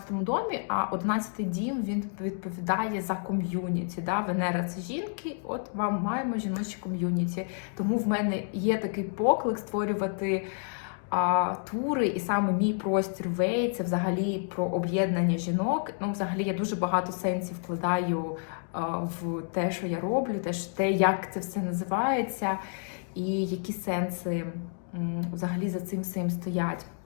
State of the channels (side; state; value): right; silent; 58 dB below the other